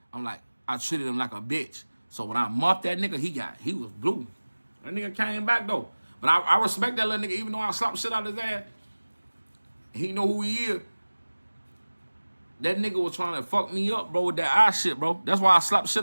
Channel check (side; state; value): both; inverted; correlation -1.00